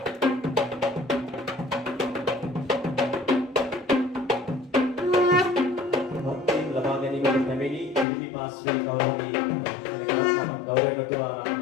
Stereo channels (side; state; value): right; drops out; at 8.1 s